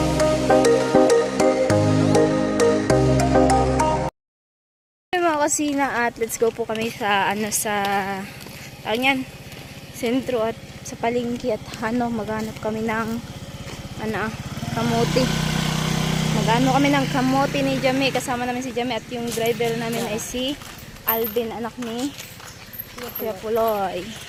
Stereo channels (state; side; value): identical; both; correlation 1.00